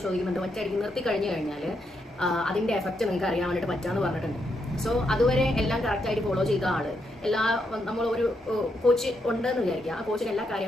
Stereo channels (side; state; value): both; normal; correlation 0.80